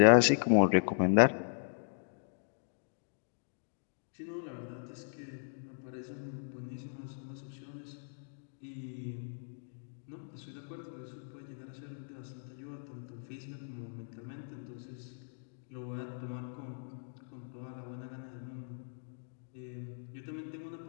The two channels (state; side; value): silent; right; digital silence